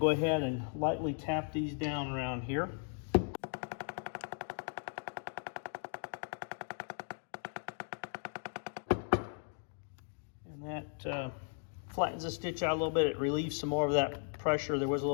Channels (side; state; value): right; silent; 53 dB below the other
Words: ahead and lightly tap these down around here. That flattens the stitch out a little bit. It relieves some more of that pressure. There was a